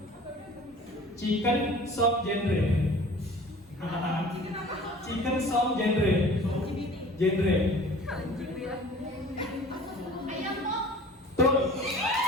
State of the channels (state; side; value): normal; both; correlation 0.45